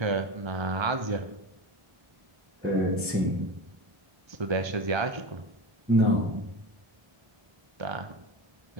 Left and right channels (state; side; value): late; left; 1.3 ms